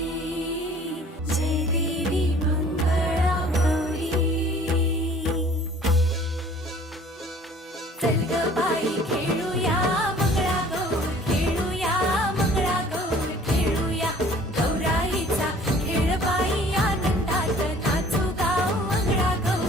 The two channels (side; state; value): both; normal; correlation 0.51